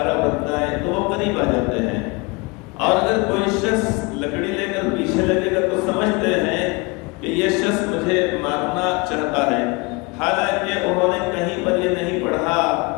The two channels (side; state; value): right; quieter; 27.4 dB